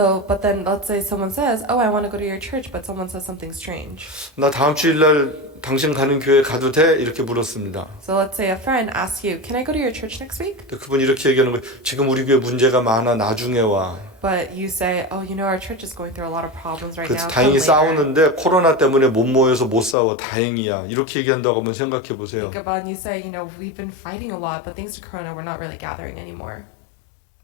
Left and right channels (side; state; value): right; drops out; at 20.0 s